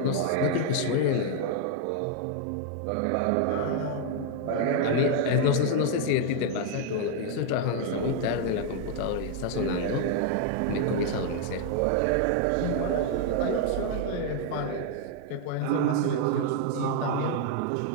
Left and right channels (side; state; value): both; different; correlation 0.00